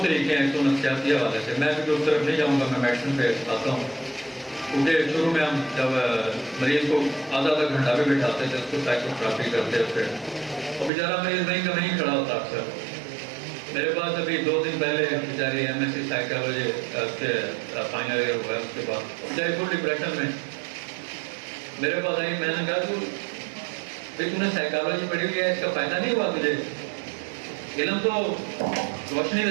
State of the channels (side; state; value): left; drops out; at 10.9 s